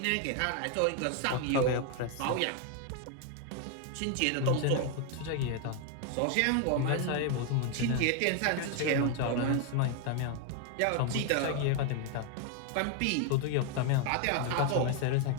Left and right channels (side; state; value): both; different; correlation 0.01